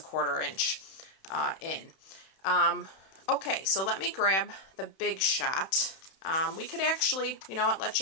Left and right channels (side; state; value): right; late; 31 ms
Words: inch in. Okay, so let me grab the Big Shot. We could actually, let's